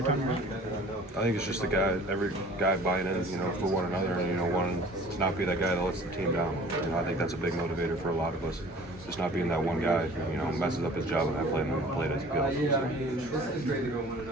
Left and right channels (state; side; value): normal; both; correlation 0.48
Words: time you're out? I think it's just every guy buying in, for one another, and wanting to not be that guy that lets the team down. I think that's a big motivator for a lot of us. Just not being that one guy, who messes up his job and not playing the play as he goes.